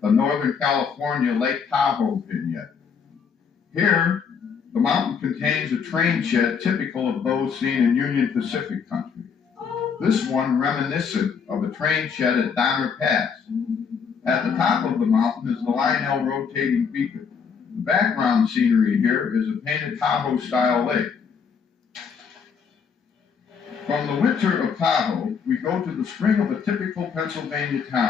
the Northern California Lake Tahoe vignette. Here, the mountain contains a train shed typical of those seen in Union Pacific country. This one reminiscent of a train shed at Donner Pass. At the top of the mountain is the Lionel rotating beacon. The background scenery here is a painted Tahoe-style lake. From the winter of Tahoe, we go to the spring of a typical Pennsylvania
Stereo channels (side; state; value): right; quieter; 6.3 dB